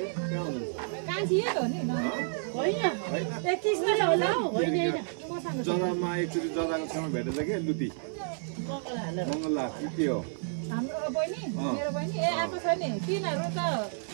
कान्छी यही हो नि होइन 21 नै होला हौ होइन जरामा एकचोटि जराको छेउमा भेटेछ कि लुती मङ्गला के हो हाम्रो बहिनी मेरो बहिनी ए आएको छ नि तिनीहरू त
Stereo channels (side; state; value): left; silent; 58 dB below the other